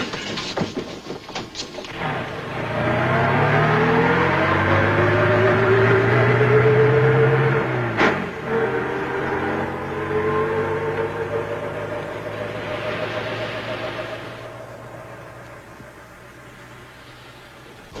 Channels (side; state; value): both; identical; correlation 1.00